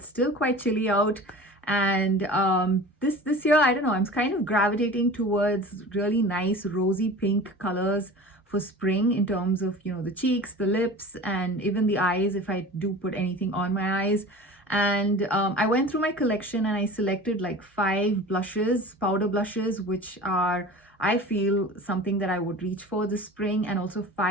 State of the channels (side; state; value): both; normal; correlation 0.38